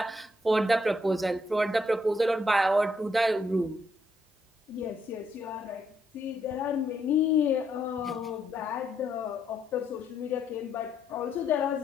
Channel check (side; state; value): both; normal; correlation 0.75